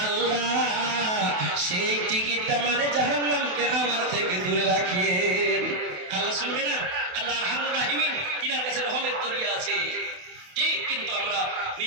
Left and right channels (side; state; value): left; late; 28 ms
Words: আল্লাহ, সেই টিকিটটা মানে জাহান্নামকে আমার থেকে দূরে রাখিয়েন। আল্লাহ শুনবে না? আল্লাহ আরহামুর রাহিমিন, তিনার কাছে রহমের দরিয়া আছে। ঠিক, কিন্তু আমরা